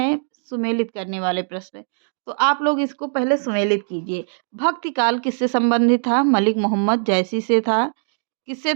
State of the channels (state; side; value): silent; left; digital silence